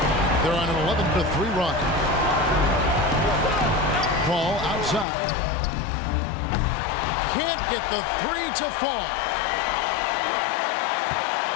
They're on an 11-3 run. Paul outside. Can't get the 3 to fall.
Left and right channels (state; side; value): drops out; right; at 5.1 s